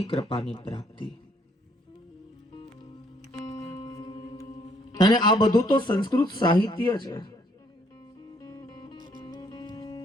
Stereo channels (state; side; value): normal; both; correlation 0.67